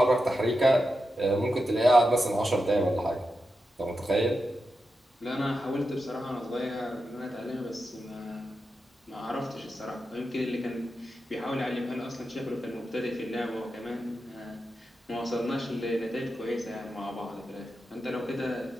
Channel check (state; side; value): normal; both; correlation 0.89